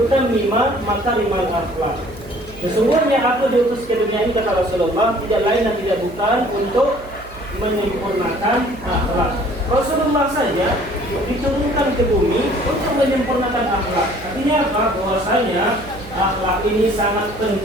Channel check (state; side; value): noise; right; hum, 19 dB below the sound